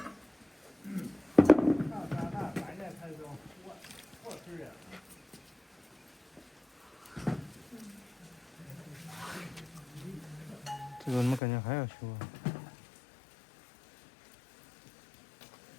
这个怎么感觉还要修啊？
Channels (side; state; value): right; drops out; at 11.4 s